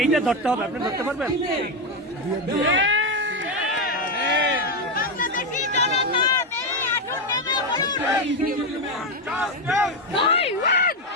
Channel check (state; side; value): normal; both; correlation 0.08